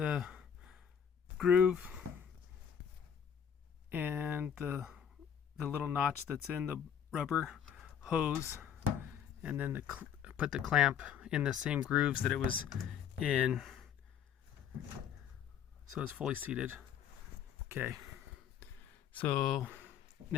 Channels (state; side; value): quieter; right; 8.4 dB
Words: groove and the little notch that's in the rubber hose, and then put the clamp in the same grooves that it was in, so it's fully seated. Okay, so